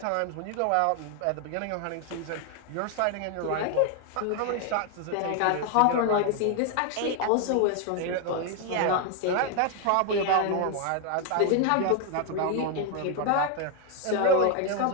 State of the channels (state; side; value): different; both; correlation 0.01